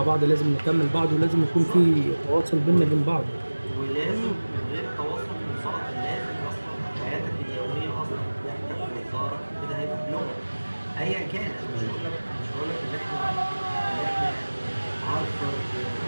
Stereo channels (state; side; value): inverted; both; correlation -1.00